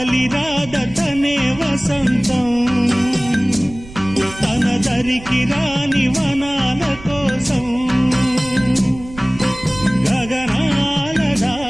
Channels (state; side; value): noise; right; rumble, 17 dB below the sound